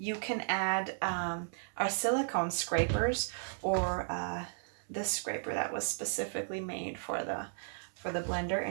can add our silicone scrapers or this scraper that was specifically made for the blender,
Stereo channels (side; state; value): left; silent; 55 dB below the other